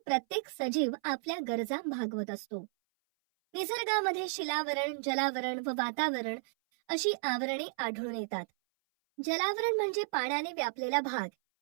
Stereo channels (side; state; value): left; silent; 56 dB below the other